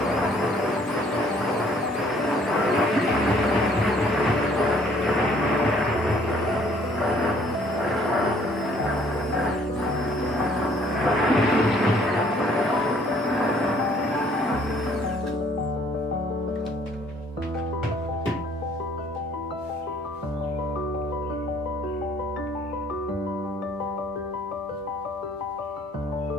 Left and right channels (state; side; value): normal; both; correlation 0.60